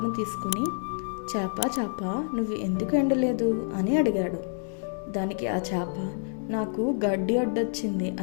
తీసుకుని, చేప నువ్వు ఎందుకు ఎండలేదు అని అడిగాడు. దానికి ఆ చేప, నాకు గడ్డి అడ్డొచ్చింది,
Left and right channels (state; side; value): silent; right; 59 dB below the other